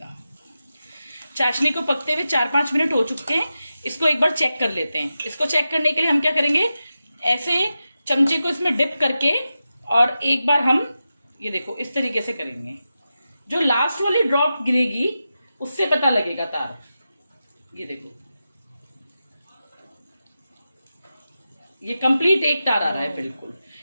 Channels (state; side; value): inverted; both; correlation -0.91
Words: चाशनी को पकते हुए 4-5 मिनट हो चुके हैं। इसको एक बार चेक कर लेते हैं। इसको चेक करने के लिए हम क्या करेंगे, ऐसे चमचे को इसमें डिप करके और एक बार हम ये देखो इस तरीके से करेंगे। जो लास्ट वाली ड्रॉप गिरेगी उससे पता लगेगा तार। ये देखो ये कंप्लीट 1 तार आ रहा है बिल्कुल।